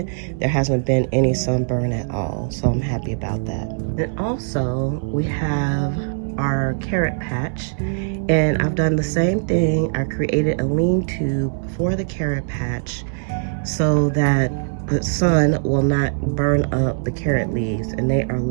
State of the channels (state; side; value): silent; left; 65 dB below the other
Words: there hasn't been any sunburn at all. So I'm happy about that. And also we have our carrot patch, and I've done the same thing. I created a lean-to for the carrot patch so that the sun will not burn up the carrot leaves, and they are